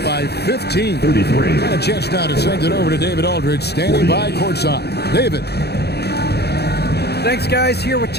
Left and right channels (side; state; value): right; late; 0.48 ms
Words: by 15. 33. And a chance now to send it over to David Aldridge, standing by courtside. David. Thanks, guys. Here with